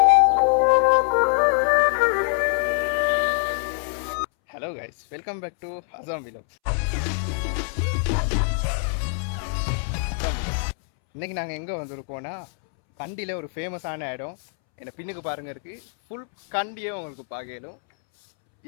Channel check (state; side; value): silent; right; 62 dB below the other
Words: hello guys, welcome back to Assam vlog. இன்னைக்கு நாங்கள் எங்கே வந்திருக்கோன்னா, கண்டியில் ஒரு ஃபேமஸான இடம். என்னை பின்னுக்கு பாருங்க இருக்குது. ஃபுல் கண்டியே உங்களுக்கு பார்க்கலும்.